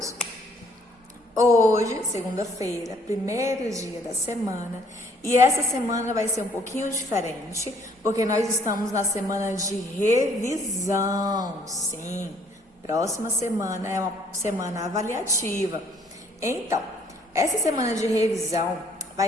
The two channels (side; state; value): both; normal; correlation 0.62